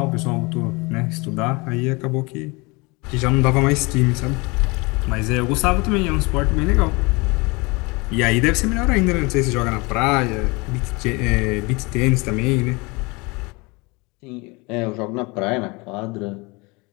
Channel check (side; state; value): right; quieter; 26.5 dB